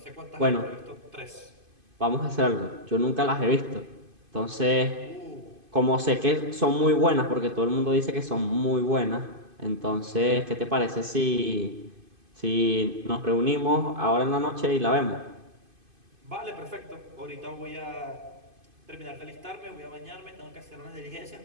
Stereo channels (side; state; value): left; late; 2.5 ms